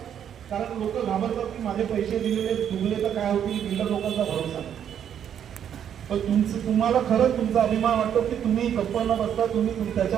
कारण लोक घाबरतात की माझे पैसे दिलेले डुबले तर काय होतील, बिल्डर लोकांचा भरोसा नाही. पण तुम्हाला खरंच तुमचा अभिमान वाटतो की तुम्ही गप्प न बसता, तुम्ही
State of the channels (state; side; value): quieter; left; 9.2 dB